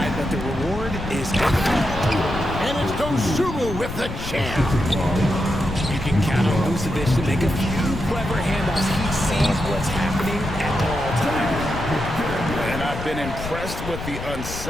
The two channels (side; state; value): left; noise; rumble, 8 dB below the sound